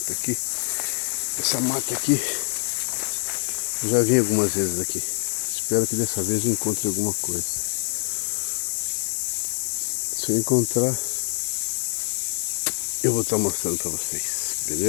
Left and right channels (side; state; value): right; silent; digital silence